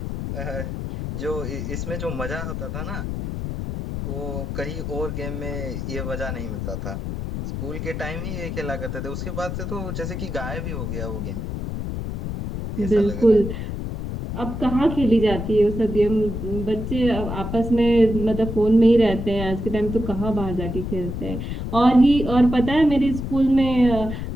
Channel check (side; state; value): left; noise; rumble, 5 dB below the sound